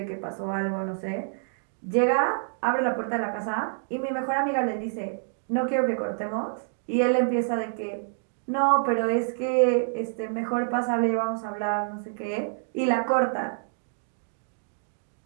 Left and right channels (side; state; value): left; silent; digital silence